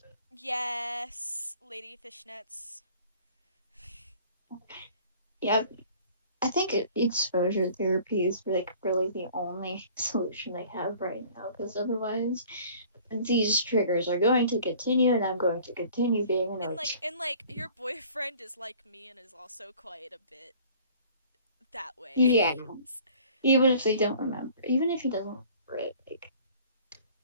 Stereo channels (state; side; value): inverted; both; correlation -0.51